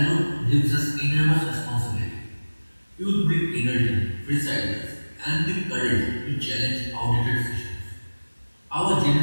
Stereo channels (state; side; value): inverted; both; correlation -1.00